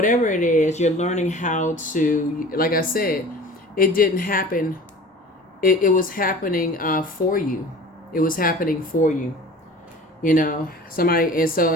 it is, you're learning how to, like I said, it didn't happen. It was happening for you. It was happening for you. You know, somebody, and so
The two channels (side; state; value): both; normal; correlation 0.41